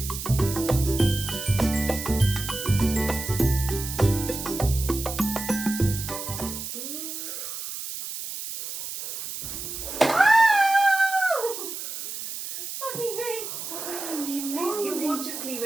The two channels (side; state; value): right; noise; hiss, 7 dB below the sound